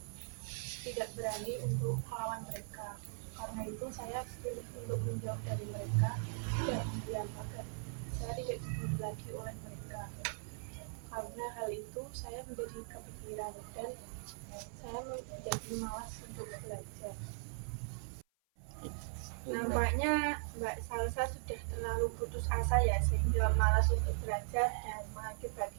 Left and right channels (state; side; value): silent; left; 52 dB below the other